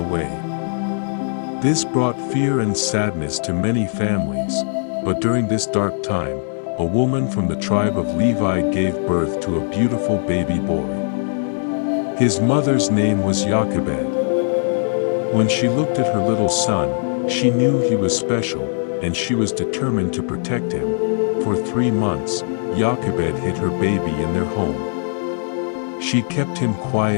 This brought fear and sadness to many families, but during this dark time, a woman from the tribe of Levi gave birth to a beautiful baby boy. His mother's name was Jochebed. When she looked at her little son, she knew he was special, and she was determined to protect him. For 3 months, Jochebed hid her baby in their home. She kept him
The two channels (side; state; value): right; silent; digital silence